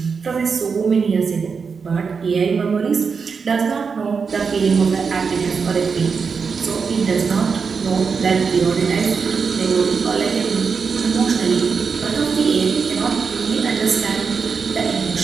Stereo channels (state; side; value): quieter; left; 5.5 dB